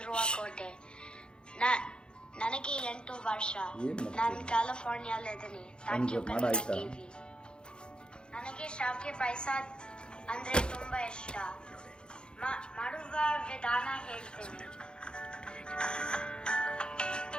ಕೋಟೆ. ನನಗೆ 8 ವರ್ಷ. ನಾನು ಕ್ಯಾಲಿಫೋರ್ನಿಯಾಲಿದ್ದೀನಿ. Thank you Kannada TV. ನನಗೆ ಶಾವಿಗೆ ಪಾಯಸ ಅಂದ್ರೆ ತುಂಬಾ ಇಷ್ಟ. ಮಾಡುವ ವಿಧಾನ ಹೇಳ್ತೇನೆ.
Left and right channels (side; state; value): right; late; 0.050 ms